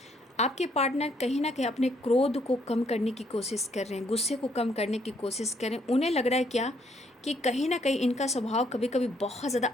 आपके पार्टनर कहीं ना कहीं अपने क्रोध को कम करने की कोशिश कर रहे हैं, गुस्से को कम करने की कोशिश कर रहे हैं। उन्हें लग रहा है क्या कि कहीं ना कहीं इनका स्वभाव कभी कभी बहुत ज़्यादा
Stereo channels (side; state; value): both; normal; correlation 0.69